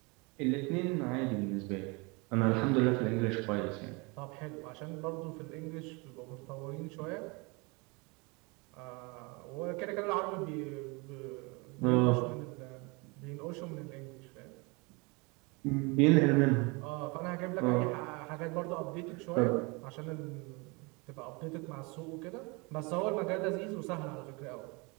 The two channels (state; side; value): quieter; left; 28.5 dB